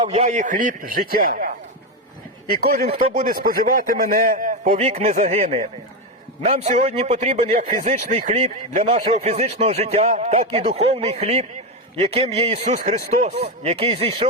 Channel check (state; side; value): normal; both; correlation 0.10